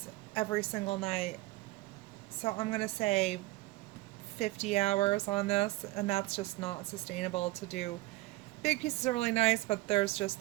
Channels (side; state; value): left; quieter; 20.0 dB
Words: every single night. So I'm going to say 50 hours on this, and that's just not sustainable to do. Big pieces are really nice, but they're